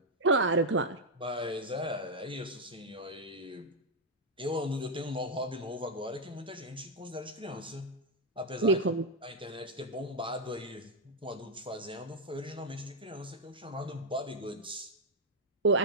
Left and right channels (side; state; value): both; normal; correlation 0.01